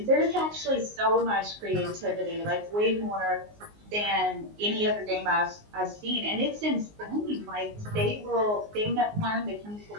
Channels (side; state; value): left; late; 19 ms